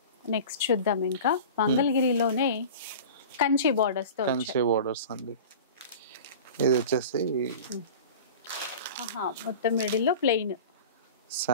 నెక్స్ట్ చూద్దాం. ఇంకా మంగళగిరిలోనే కంచి బార్డర్స్ తో, కంచి బార్డర్స్ అండి. ఇది వచ్చేసి మొత్తం మిడిల్ లో ప్లెయిన్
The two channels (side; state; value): both; inverted; correlation -0.36